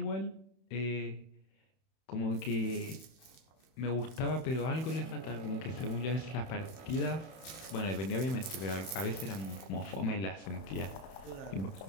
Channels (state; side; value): late; right; 31 ms